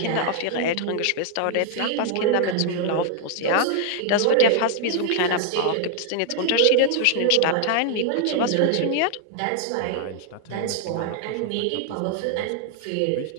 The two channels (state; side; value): different; both; correlation 0.00